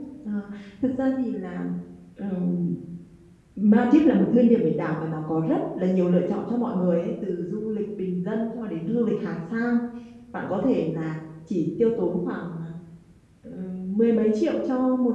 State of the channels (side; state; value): both; identical; correlation 1.00